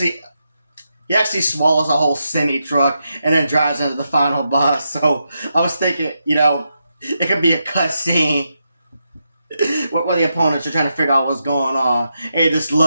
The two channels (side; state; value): both; inverted; correlation -0.85